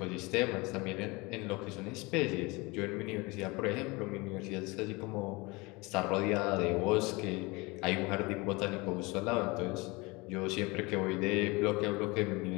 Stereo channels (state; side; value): quieter; right; 24.9 dB